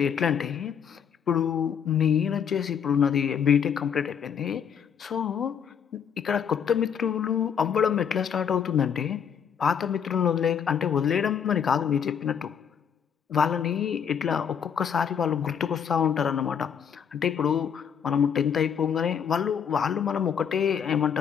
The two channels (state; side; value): quieter; right; 7.7 dB